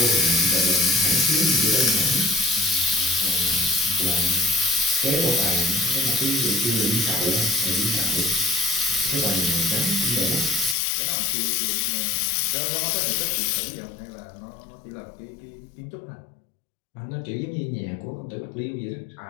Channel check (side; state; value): right; drops out; at 10.8 s